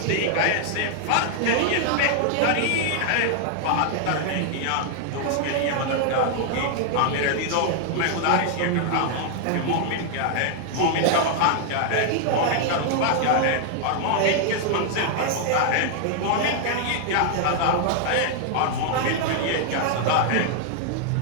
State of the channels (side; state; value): both; different; correlation 0.00